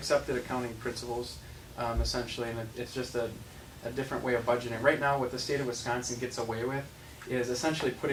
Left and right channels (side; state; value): both; identical; correlation 1.00